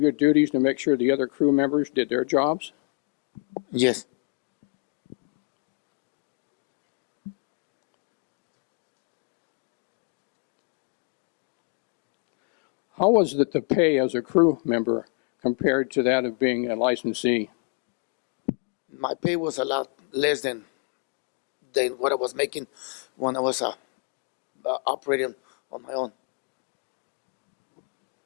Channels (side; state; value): right; quieter; 37.4 dB